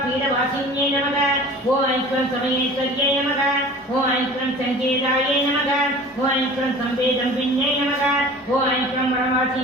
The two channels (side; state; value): both; normal; correlation 0.43